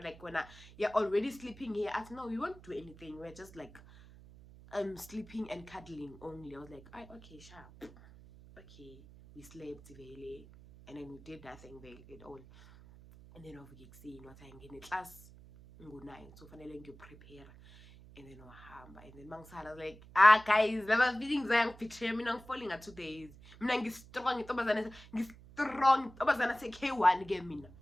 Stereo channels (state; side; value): noise; right; hum, 20 dB below the sound